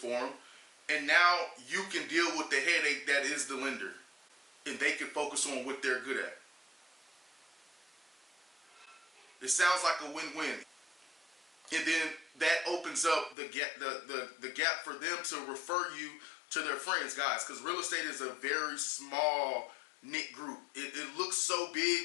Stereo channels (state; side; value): drops out; right; at 13.4 s